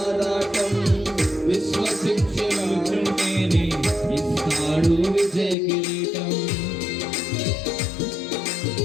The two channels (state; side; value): drops out; right; at 5.6 s